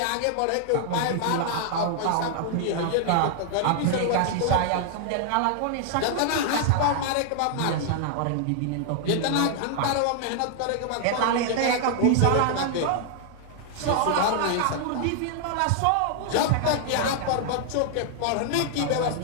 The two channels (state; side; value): different; both; correlation 0.00